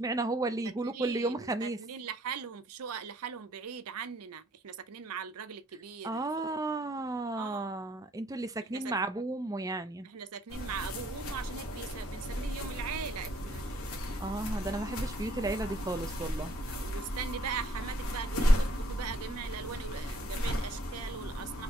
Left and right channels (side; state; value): both; normal; correlation 0.63